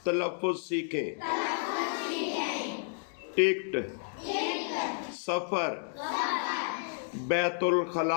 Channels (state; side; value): silent; right; digital silence